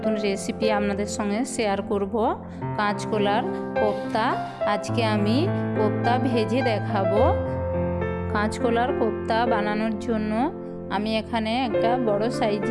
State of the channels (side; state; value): both; identical; correlation 1.00